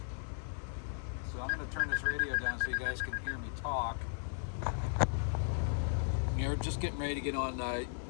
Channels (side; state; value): right; silent; digital silence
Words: So I'm going to turn this radio down so you guys can hear me talk. You're just getting ready to get on